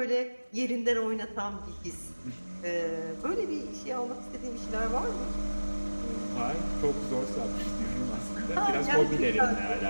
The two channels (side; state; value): both; inverted; correlation -1.00